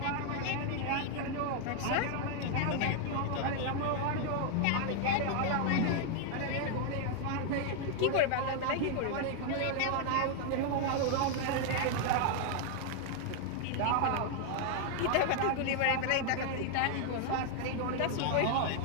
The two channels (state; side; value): different; both; correlation 0.00